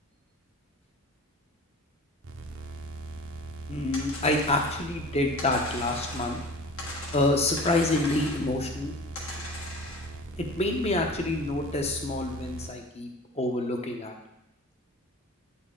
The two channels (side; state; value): both; normal; correlation 0.40